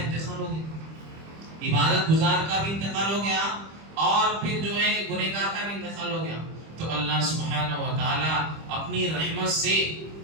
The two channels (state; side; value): late; left; 25 ms